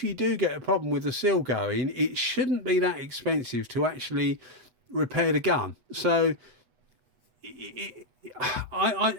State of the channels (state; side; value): late; left; 7.9 ms